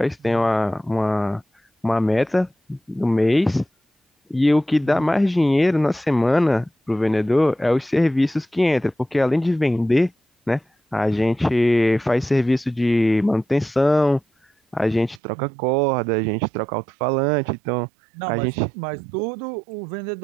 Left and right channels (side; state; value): left; drops out; at 15.2 s